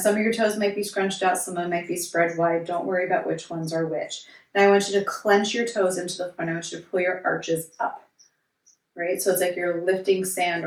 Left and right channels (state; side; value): identical; both; correlation 1.00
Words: of your toes might be scrunched out, some of them might be spread wide. Don't worry about which ones are which. Now, I want you to clench your toes into the front. I want you to pull your arches up, right? So it's like you're lifting sand